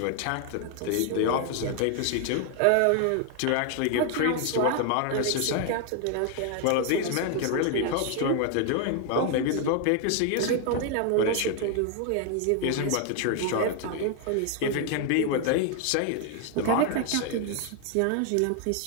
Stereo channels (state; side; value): different; both; correlation 0.00